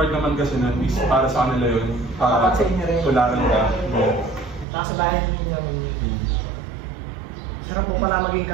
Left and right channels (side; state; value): left; drops out; at 4.7 s